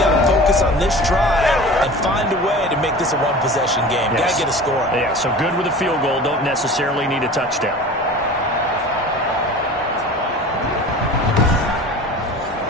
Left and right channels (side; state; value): both; normal; correlation 0.38